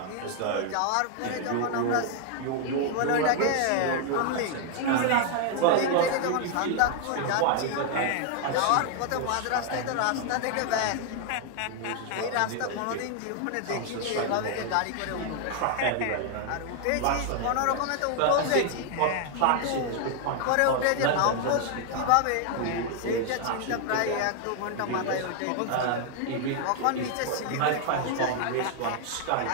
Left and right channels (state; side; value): different; both; correlation 0.00